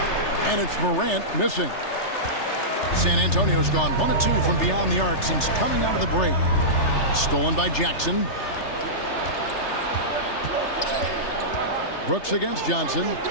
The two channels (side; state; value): right; late; 3.3 ms